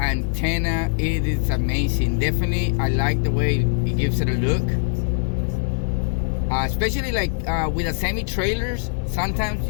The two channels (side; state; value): right; silent; 63 dB below the other